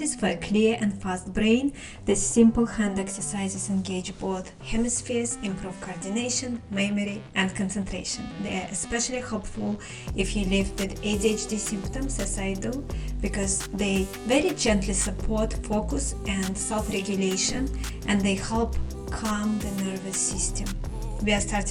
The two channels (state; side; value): identical; both; correlation 1.00